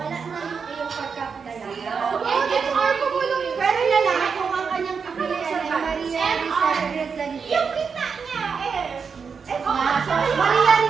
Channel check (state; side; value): quieter; left; 5.8 dB